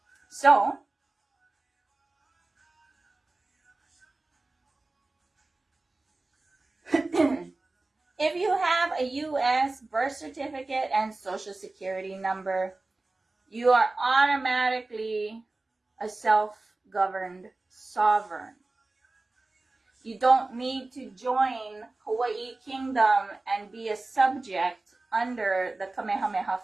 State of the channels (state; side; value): quieter; left; 3.2 dB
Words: So, if you have a U.S. birth certificate and social security number, you are automatically a self-governed sovereign. You don't need to join Hawaii Kingdom and be a subject under the Kamehameha